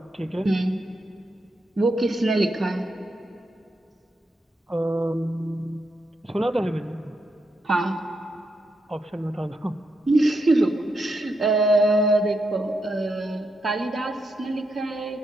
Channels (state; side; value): normal; both; correlation 0.82